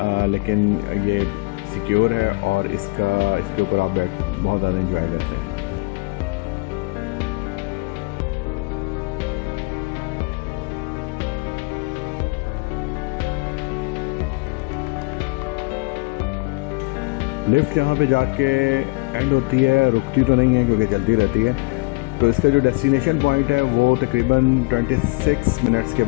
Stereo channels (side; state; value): right; quieter; 27.0 dB